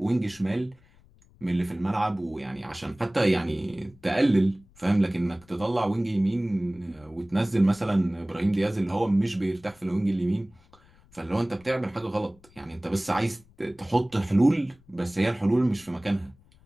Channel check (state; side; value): noise; left; rumble, 28 dB below the sound